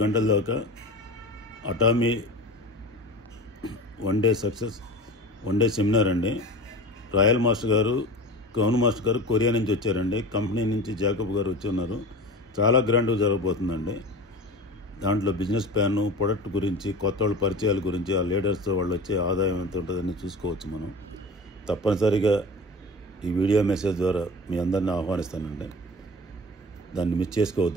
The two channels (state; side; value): normal; both; correlation 0.34